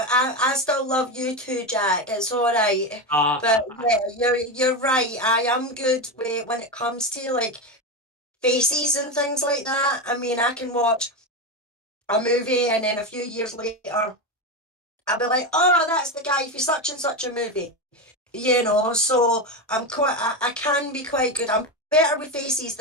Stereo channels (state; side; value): normal; both; correlation 0.15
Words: I still love you too, Jack. It's all right. But yeah, you're right. I am good when it comes to like faces and things like that. I mean, I can watch a movie and then a few years later, I'll be like, oh, that's the guy for such and such a movie. So I can be quite good. I'm better with faces